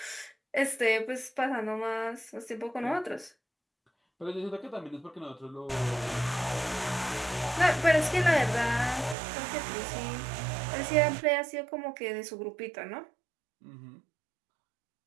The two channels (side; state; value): left; drops out; at 9.2 s